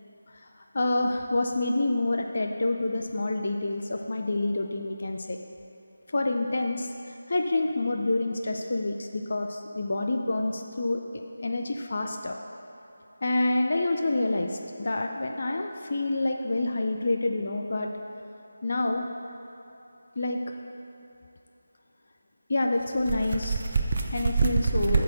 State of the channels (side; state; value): both; inverted; correlation -0.91